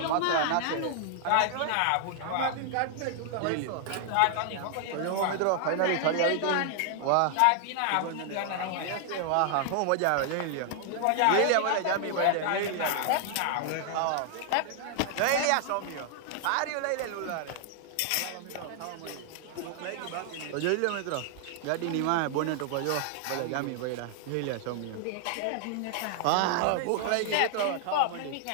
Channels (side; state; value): both; different; correlation 0.00